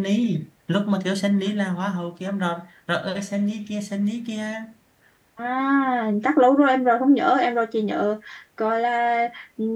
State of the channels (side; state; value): both; identical; correlation 1.00